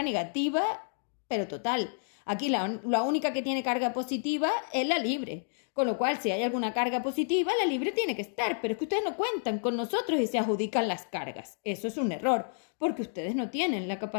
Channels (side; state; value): right; silent; digital silence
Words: negativa, pero total. Aquí la única que tiene carga positiva es la libre, con lo cual si hay alguna carga positiva, la libre tiene que estar, pero es que ustedes no cuentan con nosotros y se adjudican las cargas. Eso es un error, porque ustedes no tienen la